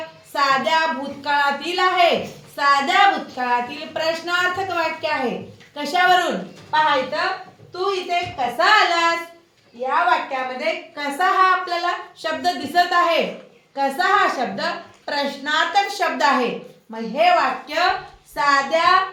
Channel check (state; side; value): identical; both; correlation 1.00